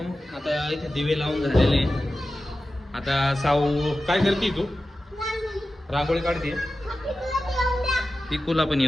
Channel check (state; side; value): normal; both; correlation 0.93